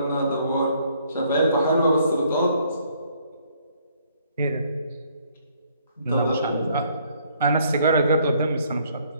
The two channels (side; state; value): both; inverted; correlation -0.65